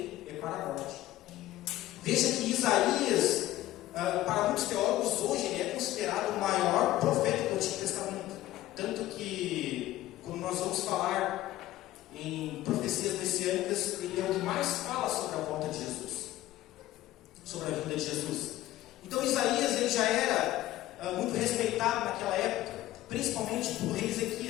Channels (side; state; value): right; quieter; 15.3 dB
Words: é para a morte. Veja que Isaías, para muitos teólogos hoje, ele é considerado o maior profeta do Antigo Testamento. Tanto que, quando nós vamos falar em profecias messiânicas, ele é o que mais fala sobre a volta de Jesus, sobre a vinda de Jesus. Então Isaías ele já era muito respeitado naquela época, principalmente pelo rei